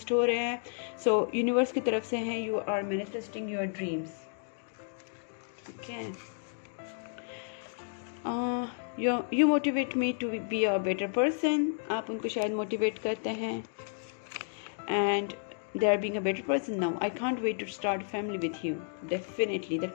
हो रहे हैं। सो यूनिवर्स की तरफ से हैं, you are manifesting your dreams. ठीक है, you motivate me to be a better person. आप उनको शायद मोटिवेट करते हैं। And they are being a better person now. I can't wait to start a family with you. Definitely that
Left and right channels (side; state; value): right; silent; digital silence